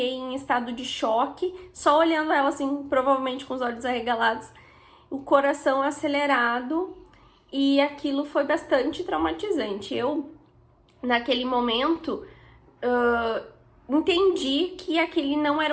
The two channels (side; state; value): both; identical; correlation 1.00